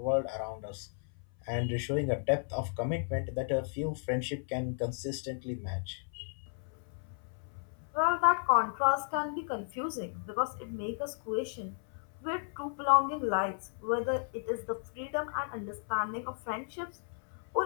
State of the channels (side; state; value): right; silent; 55 dB below the other